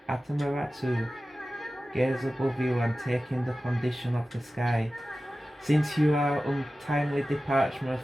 Atamaratu, gaze above you and take in the condition of the sky. Since you are untimely departure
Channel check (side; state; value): both; normal; correlation 0.95